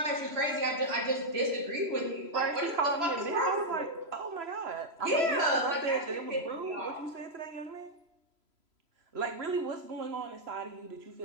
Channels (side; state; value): left; late; 3.0 ms